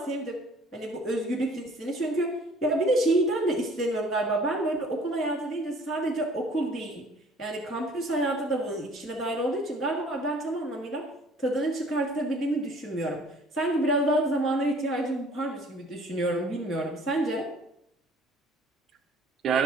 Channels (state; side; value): normal; both; correlation 0.53